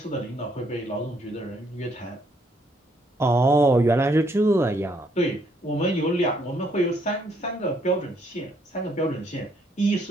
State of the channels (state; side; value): normal; both; correlation 0.70